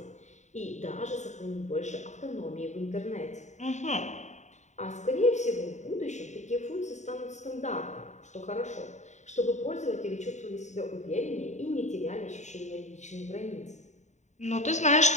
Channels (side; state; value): right; late; 0.34 ms